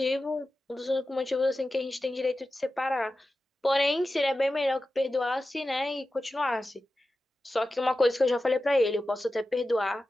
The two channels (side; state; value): both; normal; correlation 0.93